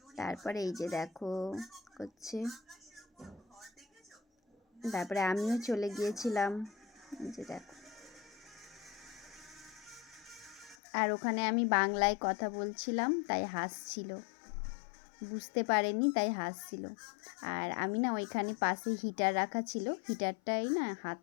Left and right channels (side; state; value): right; drops out; at 10.8 s